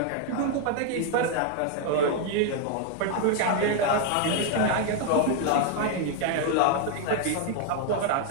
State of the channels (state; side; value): different; both; correlation 0.00